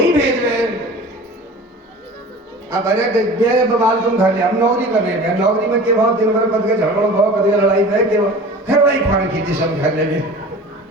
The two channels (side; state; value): both; normal; correlation 0.40